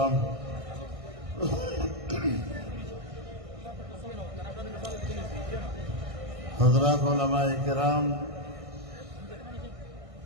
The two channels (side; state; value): left; late; 1.6 ms